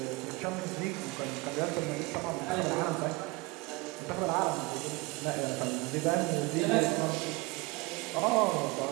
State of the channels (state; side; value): quieter; left; 23.9 dB